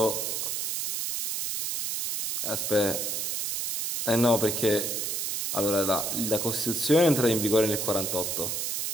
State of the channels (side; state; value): right; noise; hiss, 1 dB below the sound